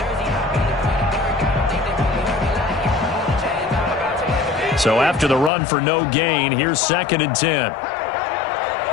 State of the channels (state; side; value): drops out; right; at 5.5 s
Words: So after the run for no gain, here's 2nd and 10.